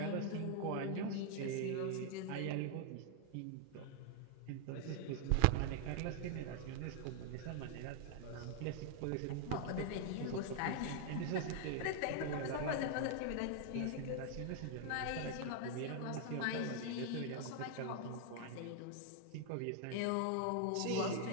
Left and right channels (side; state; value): both; different; correlation 0.00